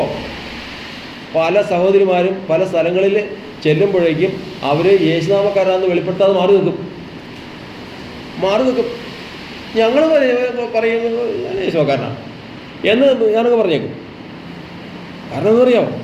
പല സഹോദരിമാരും പല സ്ഥലങ്ങളിൽ ചെല്ലുമ്പോഴേക്കും അവർ യേശുനാമക്കാരാണെന്ന് വെളിപ്പെടുത്താതെ മാറി നിൽക്കും. ഞങ്ങൾ പറയുന്നത് യേശുക്കാരനാണ് എന്ന് ഞാനൊക്കെ പറഞ്ഞേക്കും. കാരണം എന്താ അറിയാമോ?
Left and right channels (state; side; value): identical; both; correlation 1.00